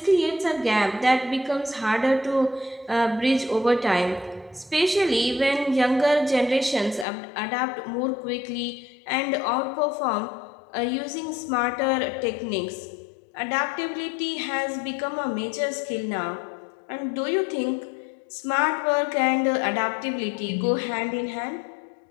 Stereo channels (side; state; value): right; drops out; at 7.1 s